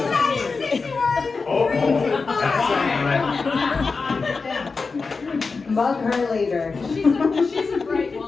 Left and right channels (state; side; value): quieter; right; 4.4 dB